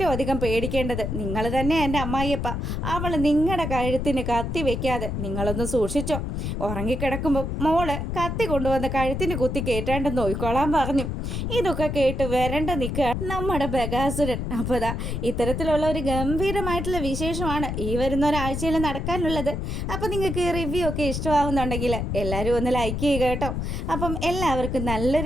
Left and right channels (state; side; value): noise; left; rumble, 3 dB below the sound